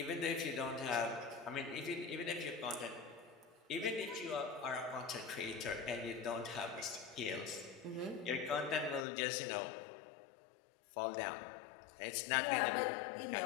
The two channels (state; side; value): drops out; right; at 9.1 s